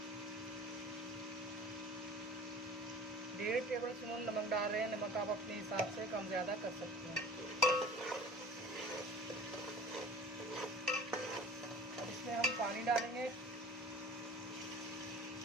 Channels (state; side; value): normal; both; correlation 0.43